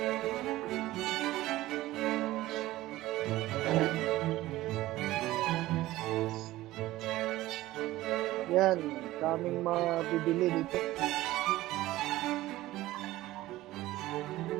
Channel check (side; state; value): left; quieter; 16.7 dB